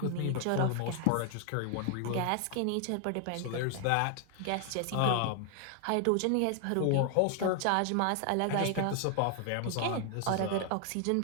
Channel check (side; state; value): both; different; correlation 0.00